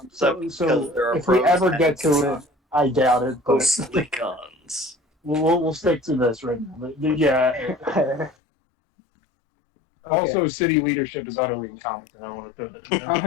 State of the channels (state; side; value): drops out; right; at 8.3 s